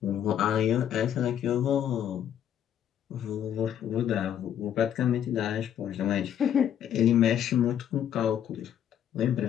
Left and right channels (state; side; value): quieter; right; 9.9 dB